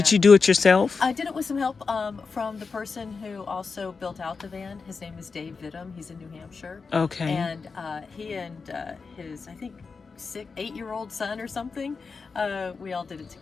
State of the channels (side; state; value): right; quieter; 4.8 dB